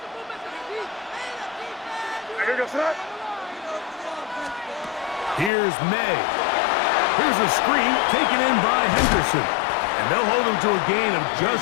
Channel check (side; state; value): right; drops out; at 5.5 s